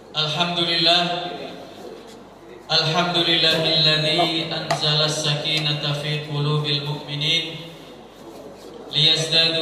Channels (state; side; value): identical; both; correlation 1.00